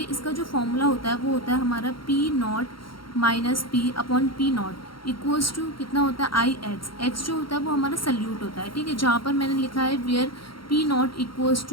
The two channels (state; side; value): late; right; 0.73 ms